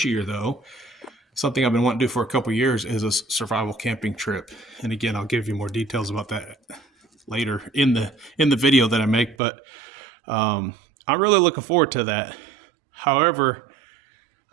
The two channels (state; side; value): drops out; left; at 9.3 s